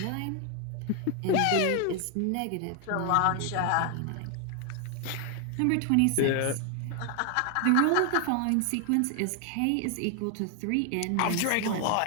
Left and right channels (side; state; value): both; different; correlation 0.00